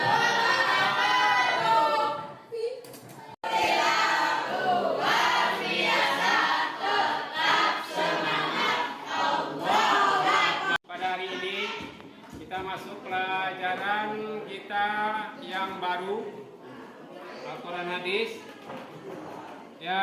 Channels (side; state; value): both; identical; correlation 1.00